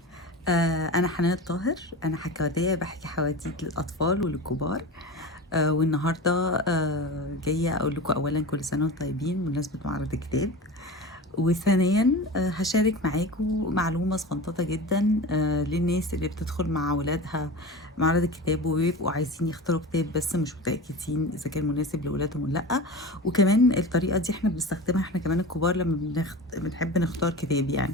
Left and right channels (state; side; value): normal; both; correlation 0.31